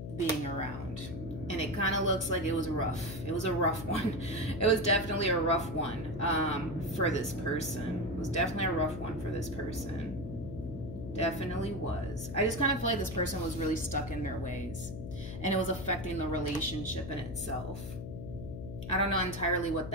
being around. And it kind of looks like it was rough. It was a rough one. It was definitely a rough one for this person. It was definitely a rough one for this person. Definitely was. I just kind of feel like this person was really stuck in their ways. And it was affecting the relationship in itself. I don't know entirely what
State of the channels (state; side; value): noise; left; hum, 8 dB below the sound